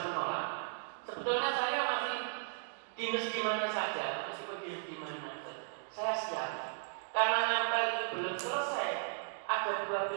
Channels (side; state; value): left; silent; digital silence